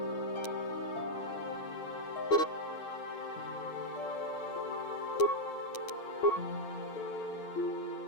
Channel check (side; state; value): right; late; 9.1 ms